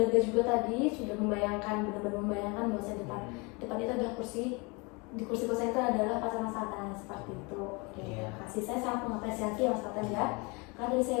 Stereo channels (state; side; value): quieter; right; 28.5 dB